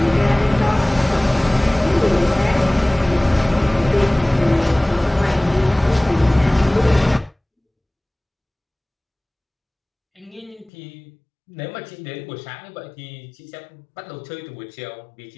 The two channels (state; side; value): drops out; right; at 10.7 s